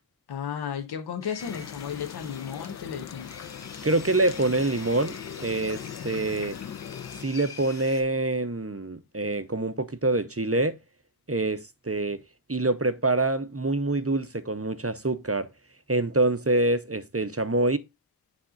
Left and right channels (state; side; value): normal; both; correlation -0.17